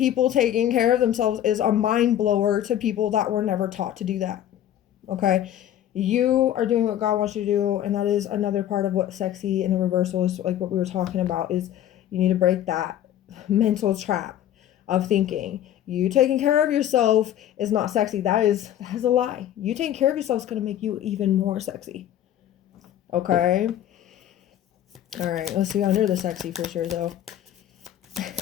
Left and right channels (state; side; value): quieter; right; 11.4 dB